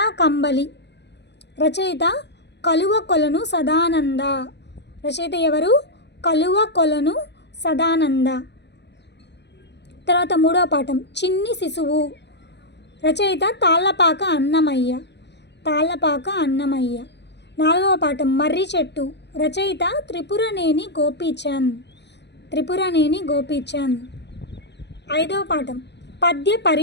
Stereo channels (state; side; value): late; right; 0.50 ms